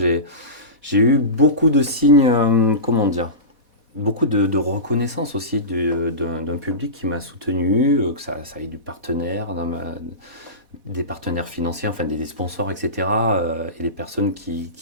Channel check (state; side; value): late; left; 4.1 ms